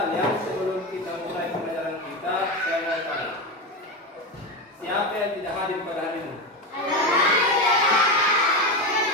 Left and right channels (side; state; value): both; normal; correlation 0.17